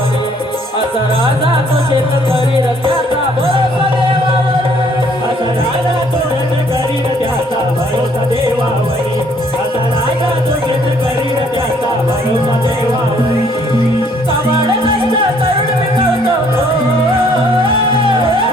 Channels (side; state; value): both; normal; correlation 0.63